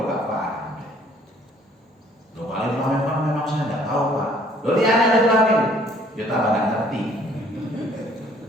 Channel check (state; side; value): normal; both; correlation 0.59